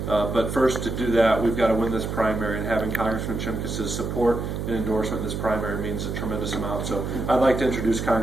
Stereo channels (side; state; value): right; noise; hum, 4 dB below the sound